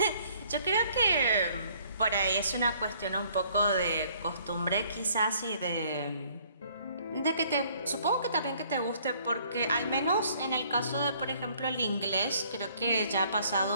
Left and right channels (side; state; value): both; inverted; correlation -0.61